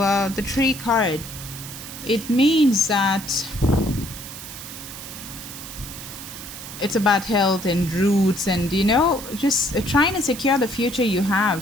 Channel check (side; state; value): right; noise; hiss, 12 dB below the sound